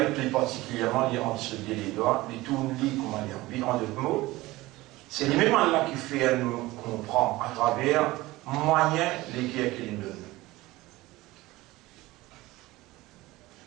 plus particulièrement entre ce les doigts, les tout comment dire, en d'autres mots. C'est lui-même Allah qui fait nous comprendre à travers moyens lesquels qu'il nous donne.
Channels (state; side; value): quieter; left; 19.2 dB